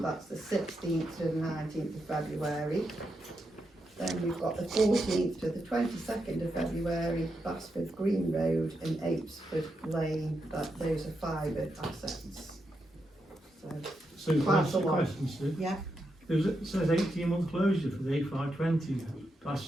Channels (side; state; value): both; normal; correlation 0.84